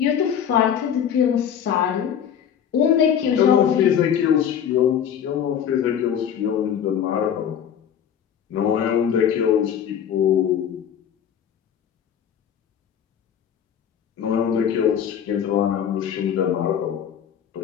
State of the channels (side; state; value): right; quieter; 8.7 dB